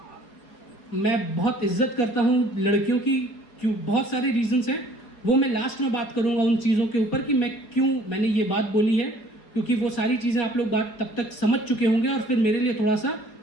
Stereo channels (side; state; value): right; late; 4.3 ms